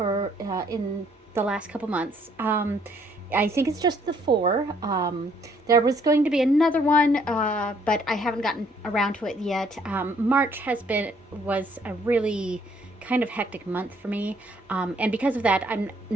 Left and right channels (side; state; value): both; normal; correlation 0.65